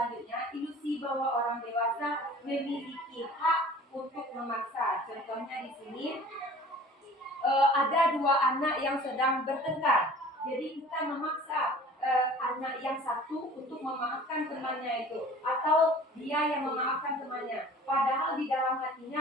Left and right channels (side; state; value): both; normal; correlation 0.46